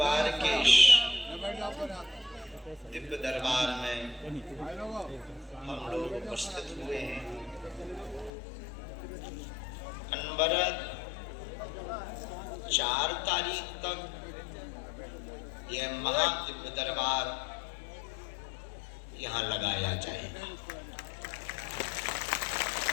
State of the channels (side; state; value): right; drops out; at 8.3 s